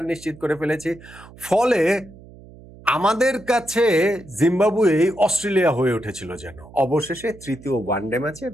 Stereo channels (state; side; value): noise; right; hum, 20 dB below the sound